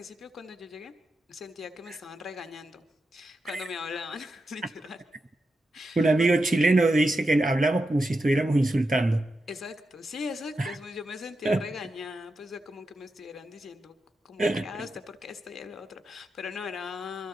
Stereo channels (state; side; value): normal; both; correlation 0.88